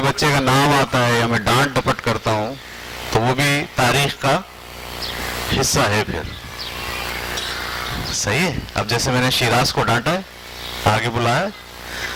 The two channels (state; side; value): identical; both; correlation 1.00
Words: बच्चे का नाम आता है या मैं डांट डपट करता हूं तो वो भी तारीख का हिस्सा है फिर, सही है। अब जैसे मैंने शिराज को डांटा है, आगे बुलाया,